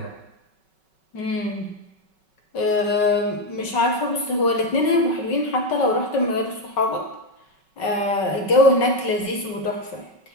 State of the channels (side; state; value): right; late; 5.3 ms